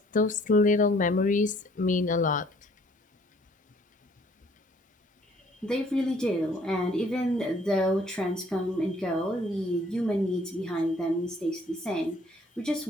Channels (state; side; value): normal; both; correlation 0.60